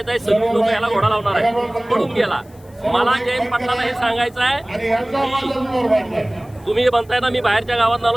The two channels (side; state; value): left; noise; hiss, 29 dB below the sound